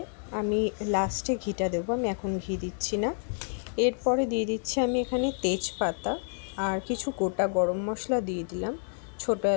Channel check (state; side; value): silent; right; 59 dB below the other